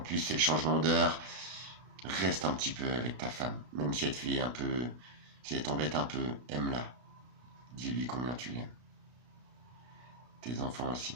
c'est le changement d'heure. Reste un petit peu avec ta femme, même si elle te fait un peu, si elle t'embête un peu, aime-la. Dis-lui combien tu l'aimes. Tes enfants aussi.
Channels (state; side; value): late; left; 32 ms